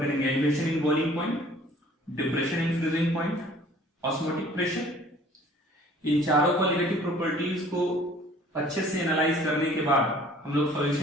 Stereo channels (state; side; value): normal; both; correlation 0.52